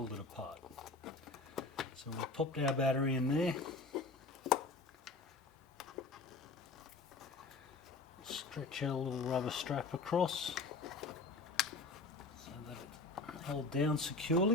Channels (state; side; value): quieter; right; 3.6 dB